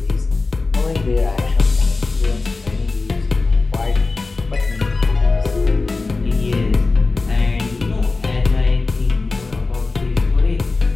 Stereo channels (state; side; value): quieter; right; 3.7 dB